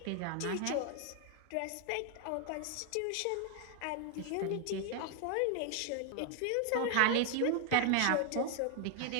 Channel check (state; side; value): different; both; correlation 0.00